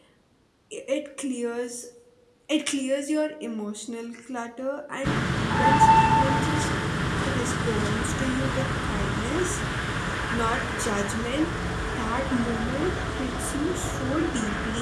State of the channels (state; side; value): identical; both; correlation 1.00